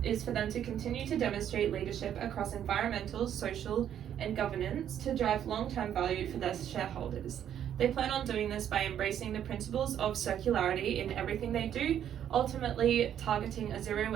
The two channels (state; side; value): quieter; left; 9.9 dB